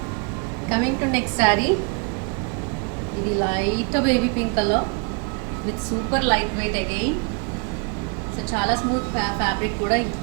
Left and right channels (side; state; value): left; quieter; 35.6 dB